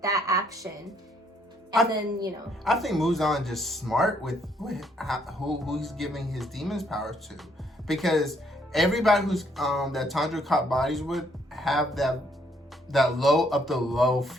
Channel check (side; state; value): both; normal; correlation 0.69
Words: that action. And I think Muzan just smart with who he's giving his demons powers to, because everybody who's that Tanjiro caught bodies with have that low of the low